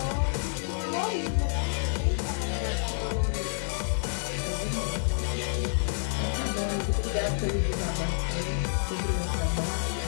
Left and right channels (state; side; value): silent; right; 59 dB below the other